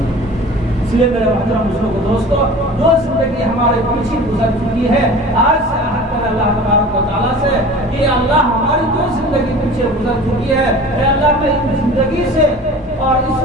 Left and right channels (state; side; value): normal; both; correlation 0.40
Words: اس لیے میرے محترم مسلموں دوستو جو زندگی ہمارے پیچھے گزر چکی ہے, آج سے عہد کریں اللہ تبارک و تعالیٰ سے کہ اللہ ہماری جو زندگی پیچھے گزر چکی ہے, اے اللہ میں اس زندگی سے اور اس